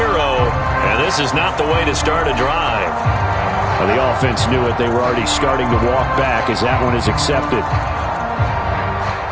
this is not the way to start a drive. Well, the offense knew it. They were already starting to walk back as that one is accepted.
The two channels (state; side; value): identical; both; correlation 1.00